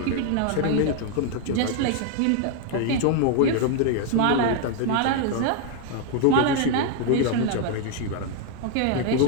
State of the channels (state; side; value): different; both; correlation 0.00